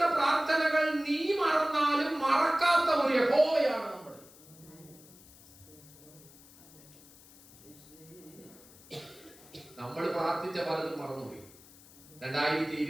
പ്രാർത്ഥനകൾ നീ മറന്നാലും മറക്കാത്ത ഒരു യഹോവയാണ് നമ്മൾ. നമ്മൾ പ്രാർത്ഥിച്ച പലതും മറന്നുപോയി.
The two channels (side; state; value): left; noise; hiss, 22 dB below the sound